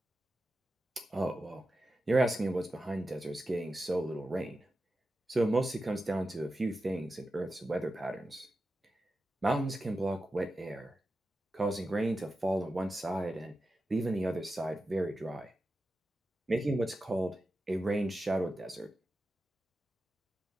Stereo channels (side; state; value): both; normal; correlation 0.91